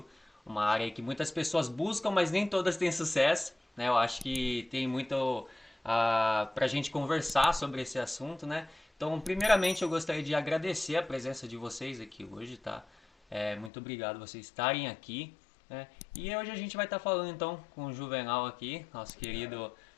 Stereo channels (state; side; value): drops out; right; at 13.7 s